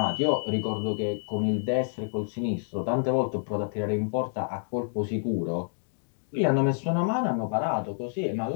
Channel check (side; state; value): right; silent; digital silence